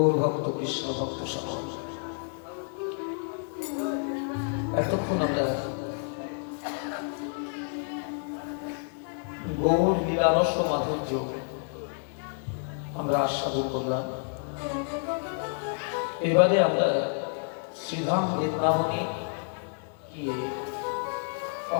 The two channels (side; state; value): right; silent; 58 dB below the other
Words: ভক্ত কৃষ্ণ ভক্ত সকল, এতক্ষণ আমরা গৌর লীলারস মাধুর্য আমরা আস্বাদন করলাম। এবারে আমরা শ্রীধাম বৃন্দাবনে গিয়ে